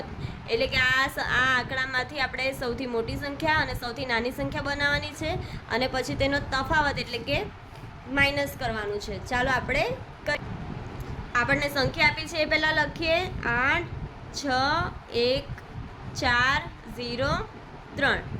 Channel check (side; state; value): both; identical; correlation 1.00